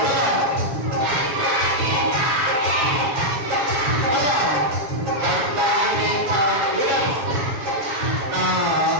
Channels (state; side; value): late; left; 7.2 ms